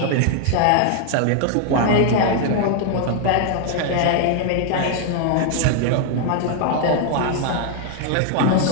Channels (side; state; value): both; different; correlation 0.00